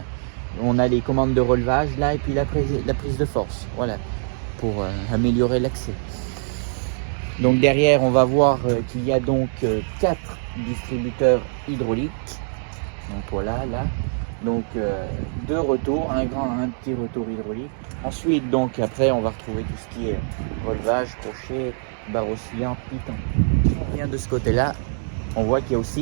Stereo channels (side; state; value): left; silent; 63 dB below the other